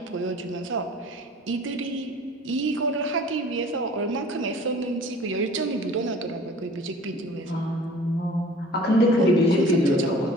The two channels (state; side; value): normal; both; correlation 0.46